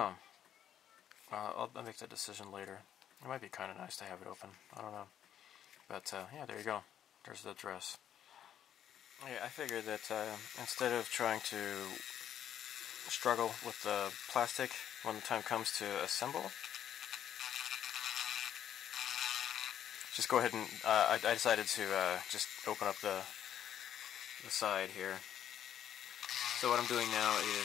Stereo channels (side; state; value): right; quieter; 10.2 dB